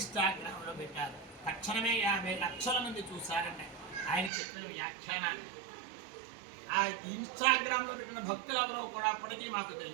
పెట్టారు. తక్షణమే 50 లక్షల మంది చూశారండి ఆయన చెప్పిన వ్యాఖ్యానాన్ని. ఆ ఇన్స్టాగ్రామ్లో పెట్టిన భక్తులు ఎవరో కూడా అప్పటికీ మాకు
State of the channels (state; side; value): drops out; left; at 4.3 s